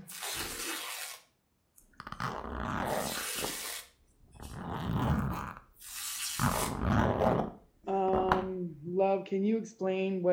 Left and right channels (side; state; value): both; identical; correlation 1.00